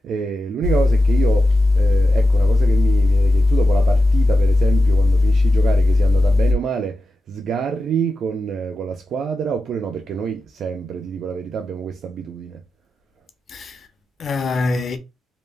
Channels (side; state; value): both; normal; correlation 0.91